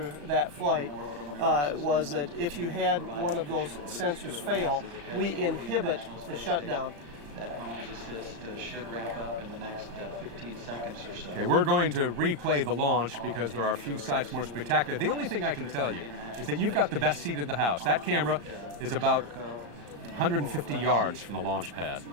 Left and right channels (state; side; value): late; left; 34 ms